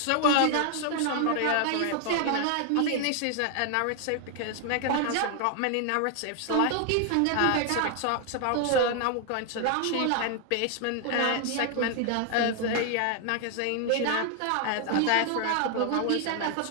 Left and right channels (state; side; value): different; both; correlation 0.00